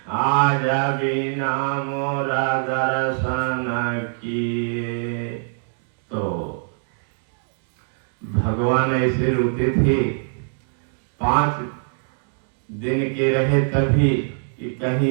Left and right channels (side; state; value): left; silent; digital silence